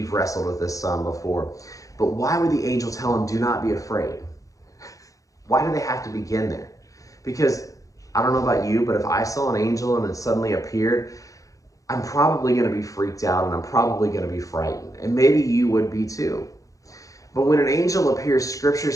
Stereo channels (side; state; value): right; late; 0.16 ms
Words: wrestled with this some before, but why would the angel tell him, do not be afraid? Why do they have to begin there? Because I don't know about you, but if I saw an angel and it suddenly appeared, I'm probably going to be freaked out, and I'm probably going to be frightened. And maybe you would be too. But when an angel appears, Scripture